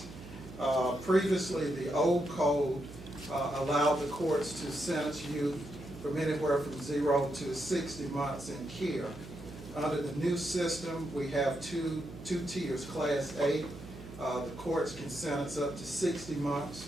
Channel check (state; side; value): noise; right; hum, 14 dB below the sound